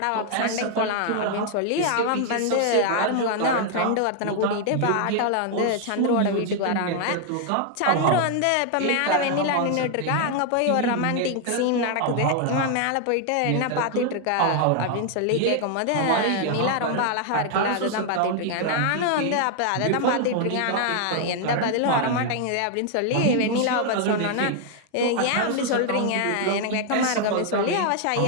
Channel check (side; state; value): both; different; correlation 0.00